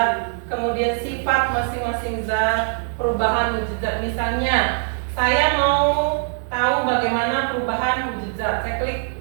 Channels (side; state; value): left; silent; digital silence